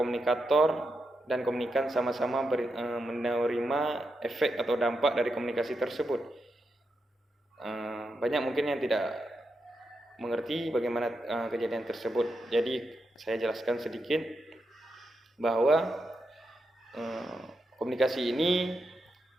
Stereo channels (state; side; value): normal; both; correlation 0.85